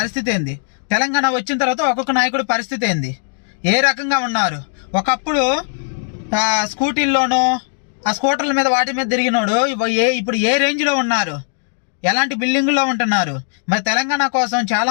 ఏంది, తెలంగాణ వచ్చిన తర్వాత ఒక్కొక్క నాయకుడి పరిస్థితి ఏంది, ఏ రకంగా ఉన్నారు? ఒకప్పుడు స్కూటీల్లోనో ఆ స్కూటర్ల మీద వాటి మీద తిరిగినోడు ఇప్పుడు ఏ రేంజ్లో ఉన్నారు, ఎలాంటి బిల్డింగుల్లో ఉంటున్నారు? మరి తెలంగాణ కోసం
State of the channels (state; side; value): silent; right; digital silence